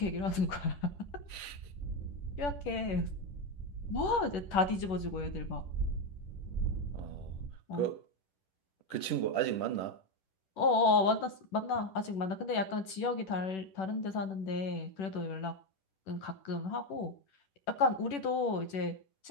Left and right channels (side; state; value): right; late; 10 ms